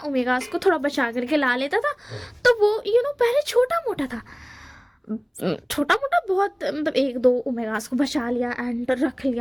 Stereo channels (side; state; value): both; identical; correlation 1.00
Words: ओमेगास को थोड़ा बचा करके ला लेता था। तो वो पहले छोटा मोटा था, छोटा मोटा बहुत, मतलब एक दो ओमेगास को बचा लिया एंड रख